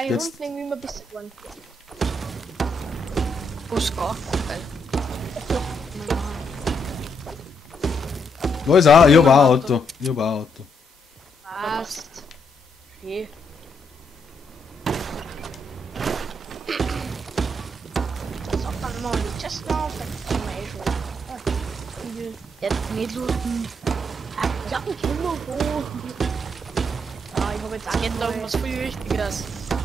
die Jetzt- Runden irgendwie immer besser geworden. Oscar. Geil. Da ist auch, ich hab auch ein Auto. Ich hab auch ein Auto. Passt. Okay. Sag dann mal die Chest auf, dann kann man eh schon. Jetzt nicht looten. Ja, ich will nur hoch. Ja, ich habe jetzt Es geht da um auch was viel Wichtigeres.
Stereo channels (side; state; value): both; normal; correlation 0.77